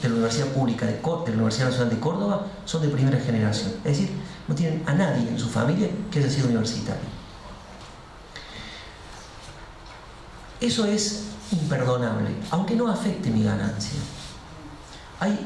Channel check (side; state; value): both; identical; correlation 1.00